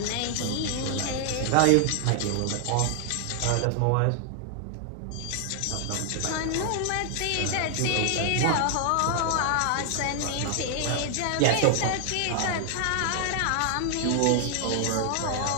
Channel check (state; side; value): different; both; correlation 0.00